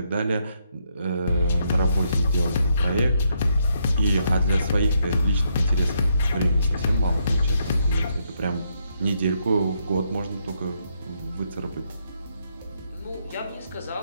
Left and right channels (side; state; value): both; inverted; correlation -0.76